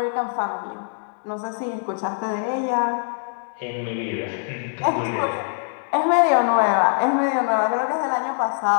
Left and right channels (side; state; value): right; silent; digital silence